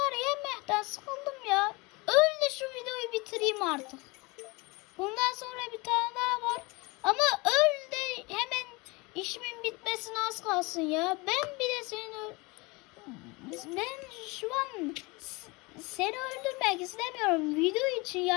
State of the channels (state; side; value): quieter; right; 25.6 dB